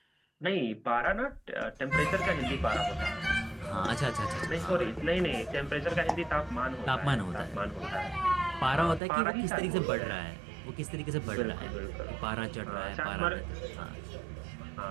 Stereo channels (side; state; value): left; drops out; at 9.0 s